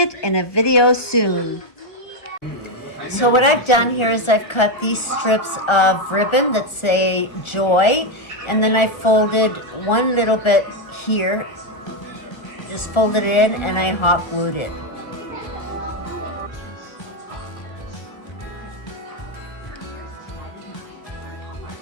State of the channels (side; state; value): right; late; 1.4 ms